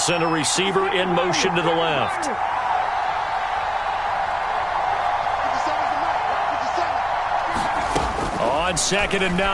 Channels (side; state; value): both; identical; correlation 1.00